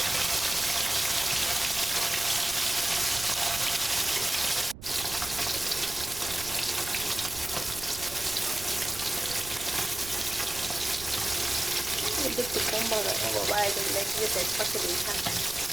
একটু কম বাবা,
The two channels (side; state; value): right; noise; rumble, 14 dB below the sound